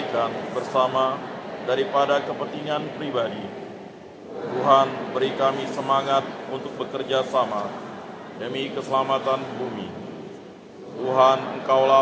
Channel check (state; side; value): identical; both; correlation 1.00